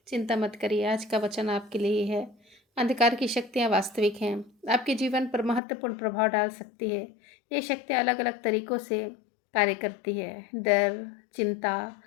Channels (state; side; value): drops out; right; at 5.6 s